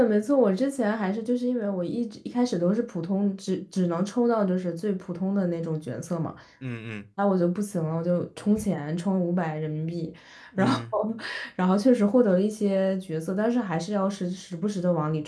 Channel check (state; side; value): identical; both; correlation 1.00